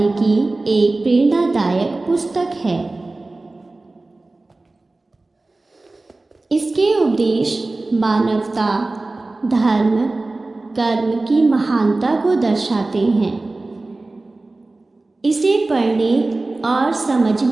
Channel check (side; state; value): left; quieter; 3.1 dB